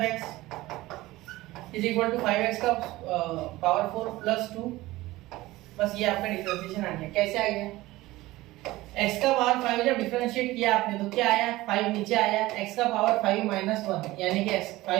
x is equal to 5x का पावर 4 प्लस 2। बस ये आपका डिफरेंशिएशन आ गया। कैसे आ गया, x का पावर 5 जब डिफरेंशिएट किया आपने तो क्या आया, 5 नीचे आया, x का पावर 5 माइनस 1 यानी कि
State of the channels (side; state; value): left; quieter; 18.3 dB